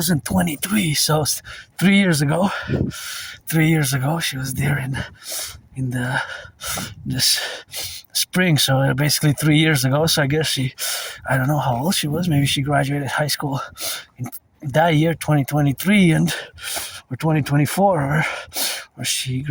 so 3 years ago. 3 years ago, she was there in this spring, so basically 3 years ago. So I guess I don't know how old she was. Maybe she graduated high school in that year, 2023, or 2024, or she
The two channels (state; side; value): identical; both; correlation 1.00